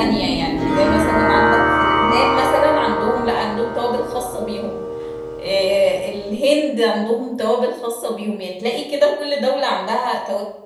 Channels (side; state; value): both; identical; correlation 1.00